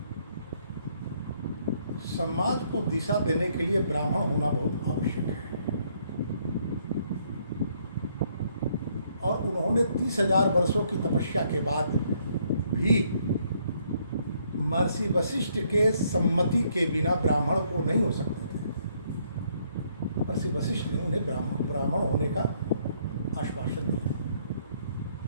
समाज को दिशा देने के लिए ब्राह्मण होना बहुत आवश्यक है। और उन्होंने 30,000 वर्षों की तपस्या के बाद भी महर्षि वशिष्ठ के सम्मति के बिना ब्राह्मण को नहीं हो सकते थे। महर्षि वशिष्ठ ने उन्हें ब्राह्मण होने का आश्वासन दिया।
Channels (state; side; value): inverted; both; correlation -0.69